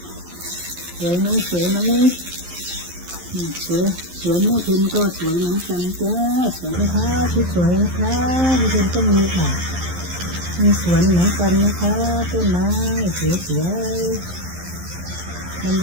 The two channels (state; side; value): late; left; 11 ms